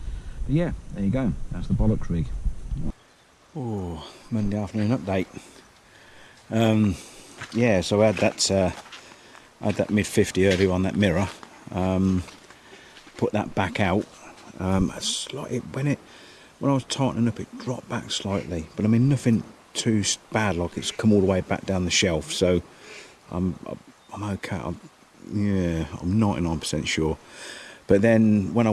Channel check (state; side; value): identical; both; correlation 1.00